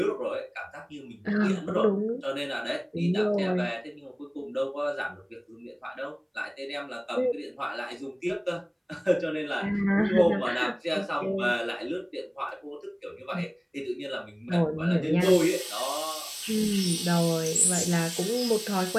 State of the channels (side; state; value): both; identical; correlation 1.00